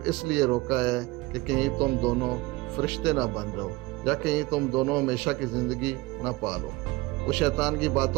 اس لیے روکا ہے کہ کہیں تم دونوں فرشتے نہ بن جاؤ یا کہیں تم دونوں ہمیشہ کی زندگی نہ پالو۔ وہ شیطان کی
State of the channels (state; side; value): quieter; left; 20.8 dB